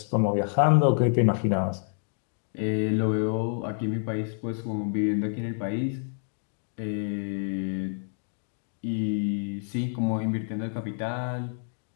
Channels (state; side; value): silent; right; digital silence